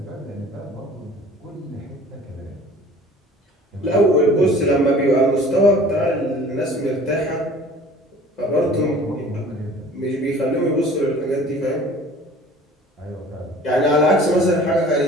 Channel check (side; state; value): both; normal; correlation 0.47